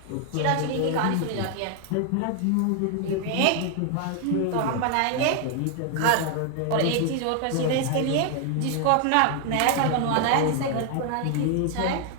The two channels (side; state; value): both; different; correlation 0.00